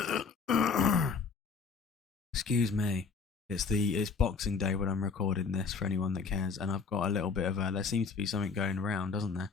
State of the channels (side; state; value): right; quieter; 5.1 dB